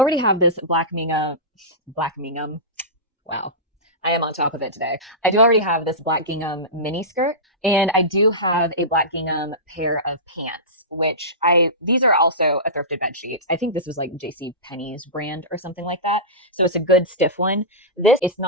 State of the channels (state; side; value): normal; both; correlation -0.18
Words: have this black gingham. Wow. I am on top of it today. I do already have this black gingham mini skirt, and I do have a black gingham pair of pants, which these are also a thrifted bed sheets. I think this was like JC Penney's brand or something like that. So it's a good stiff one. This it's